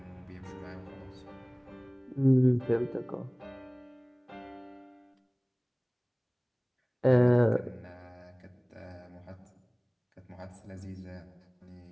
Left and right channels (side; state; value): both; identical; correlation 1.00